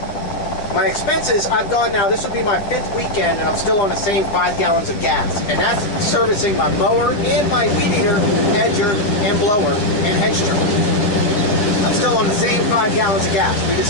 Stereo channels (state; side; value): late; right; 9.8 ms